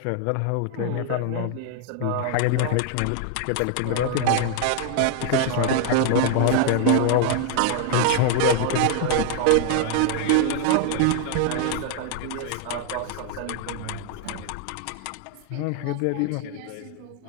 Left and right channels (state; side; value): different; both; correlation 0.00